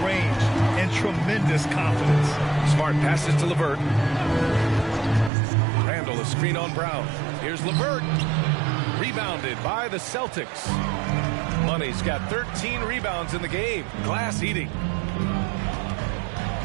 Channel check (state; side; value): drops out; left; at 5.3 s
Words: range and tremendous confidence. Smart passes to LeVert. Randall a screen on Brown. Here's LeVert. Rebounded by the Celtics. Money's got 13 rebounds in the game. Glass eating.